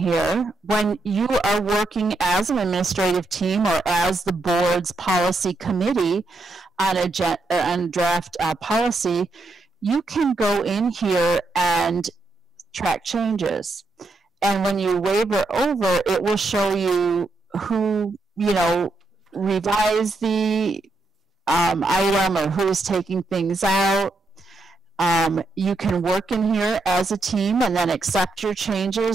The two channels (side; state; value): left; quieter; 3.2 dB